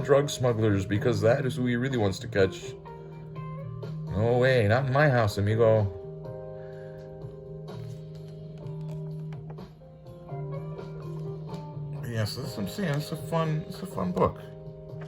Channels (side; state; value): both; identical; correlation 1.00